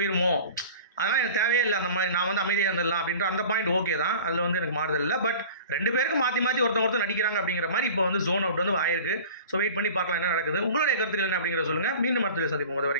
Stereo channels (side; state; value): both; inverted; correlation -0.40